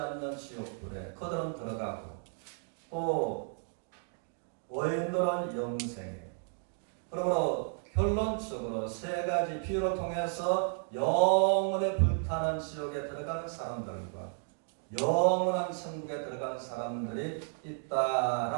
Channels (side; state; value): left; silent; 56 dB below the other